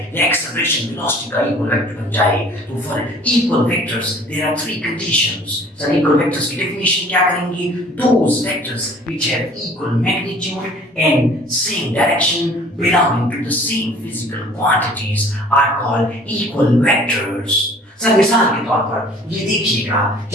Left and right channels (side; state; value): both; normal; correlation 0.51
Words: या एक्सेलरेशन वेलोसिटी का इक्वल वेक्टर बन जाए। तो for equal vectors there are three conditions. Sir equal vectors की डेफिनेशन क्या करेंगे? Those vectors which have equal magnitude and same direction belonging to the same physical quantities are called equal vectors। Sir मिसाल के तौर पर ये देखिएगा,